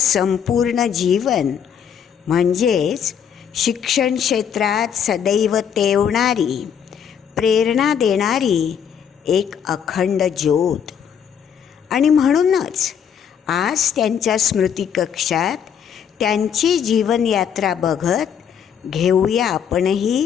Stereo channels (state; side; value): quieter; right; 8.1 dB